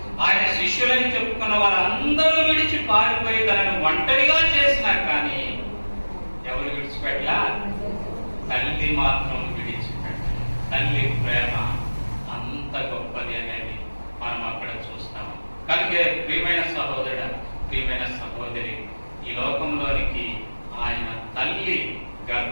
ఆయన శిష్యులని చెప్పుకున్న వారు అందరూ విడిచి పారిపోయి తనను ఒంటరిగా చేసినా కానీ ఎవరు విడిచిపెట్టలా? తల్లి మాత్రం విడిచిపెట్టాలి. తల్లి ప్రేమ అంత గొప్పది అనేది మనం అక్కడ చూస్తాం. కనుక ప్రియమైన సహోదరుడు, ప్రియమైన సహోదరి, ఈ లోకంలోనికి ఆయన తల్లి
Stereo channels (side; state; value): both; inverted; correlation -1.00